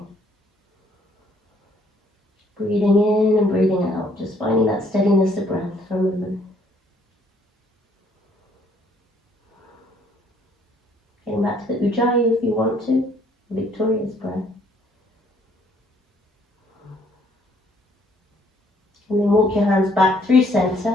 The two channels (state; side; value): normal; both; correlation 0.65